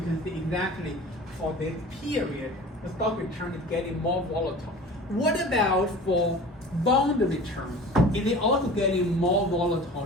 can see exactly for this period, the stock return is getting more volatile. What about for bond returns? Is it also getting more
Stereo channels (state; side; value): normal; both; correlation 0.40